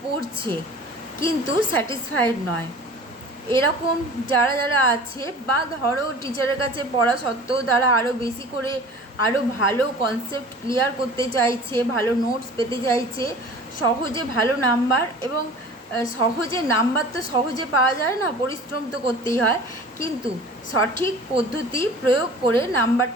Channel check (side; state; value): both; normal; correlation 0.42